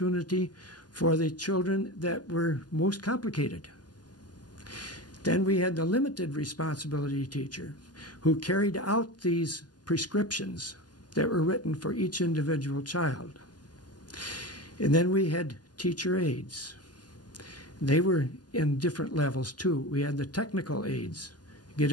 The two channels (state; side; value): late; right; 0.70 ms